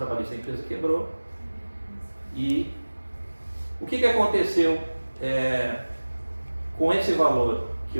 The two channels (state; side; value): inverted; both; correlation -1.00